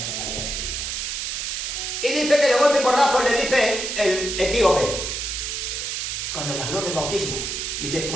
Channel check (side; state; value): right; noise; hiss, 3 dB below the sound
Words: había escrita. Y dice que de golpe y porrazo le dice el etíope, cuando le habló del bautismo, dice,